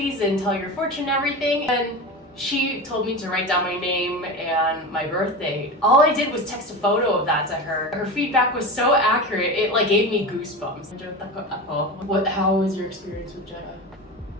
and tell your fortune and everything. And she told me to write down my name and my birth date. All I did was text a photo of that to her. Her feedback was so accurate, it like gave me goosebumps. How was your experience with Jenna?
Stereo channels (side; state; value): both; normal; correlation 0.26